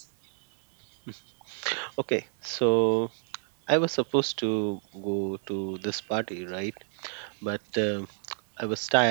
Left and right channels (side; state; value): left; silent; 58 dB below the other